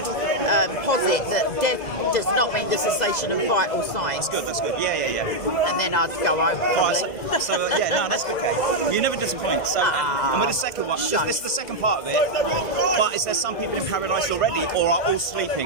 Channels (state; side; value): late; right; 2.0 ms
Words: posit that death does not mean the cessation of vital signs. That's good. Yeah. And then I'd go home probably. That's good, Kate. You never disappoint. So, and with the second one, this is the second part of it. But is there some people in paradise already, or are all